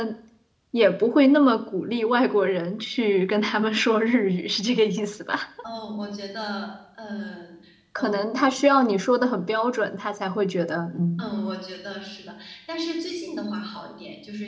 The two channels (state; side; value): identical; both; correlation 1.00